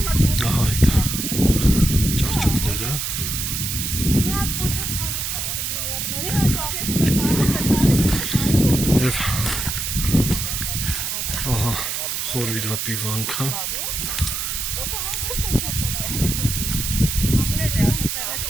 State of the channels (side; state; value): right; noise; hiss, 2 dB below the sound